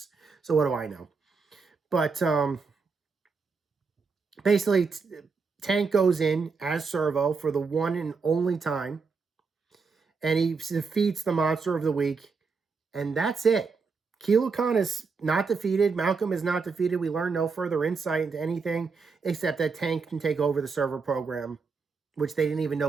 So what do I know? But basically, Tank goes in as Servo for the one and only time, and he defeats the monster of the week, and that's it. Kilo Khan is not defeated. Malcolm is not defeated. We learn no further insight into anything except that Tank can take over the server program, which they didn't even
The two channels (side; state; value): left; quieter; 4.8 dB